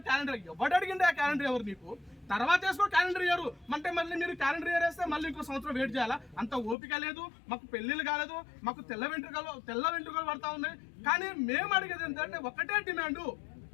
అడిగింది? ఆ క్యాలెండర్ ఎవరు నీకు? తర్వాత వేసుకో క్యాలెండర్ ఇయర్ అంటే మళ్ళీ మీరు క్యాలెండర్ ఇయర్ వేస్తే మళ్ళీ ఇంకో సంవత్సరం వెయిట్ చేయాలా? అంత ఓపిక లేదు. మాకు పెళ్లిళ్ళు కాలేదు, మాకు తెల్ల వెంట్రుకలు పడతా ఉన్నాయి. కానీ మేము అడిగేది ఏంటంటే ఒకటే డిమాండ్,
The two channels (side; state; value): right; drops out; at 6.8 s